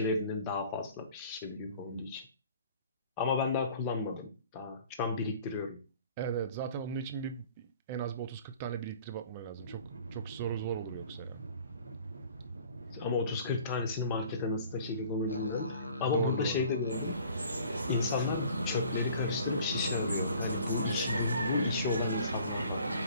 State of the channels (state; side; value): inverted; both; correlation -0.50